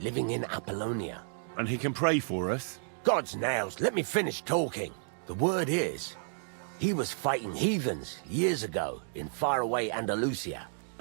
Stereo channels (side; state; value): left; silent; digital silence